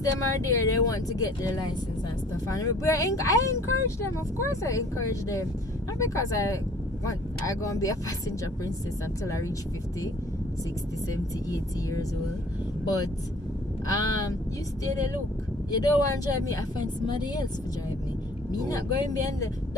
them are there, they want to get their license and stuff, and I encourage them. Of course I encourage them, not because I gonna be a passenger princess until I reach 50, 60, 70, 80 years old, but you stay there. Look, you don't want to drive me, I find somebody else to drive me. Not going behind the,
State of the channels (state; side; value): normal; both; correlation 0.54